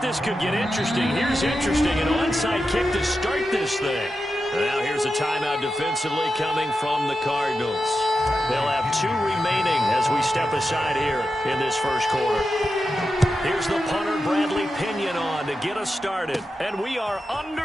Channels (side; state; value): both; normal; correlation 0.90